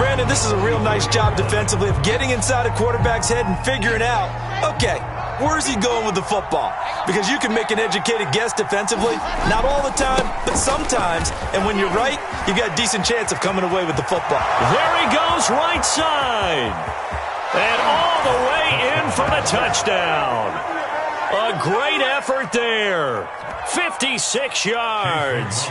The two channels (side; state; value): both; identical; correlation 1.00